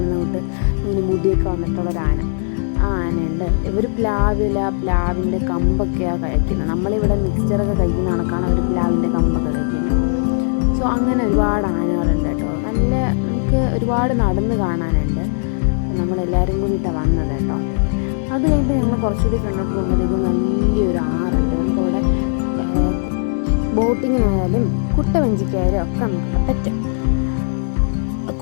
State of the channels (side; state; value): right; silent; digital silence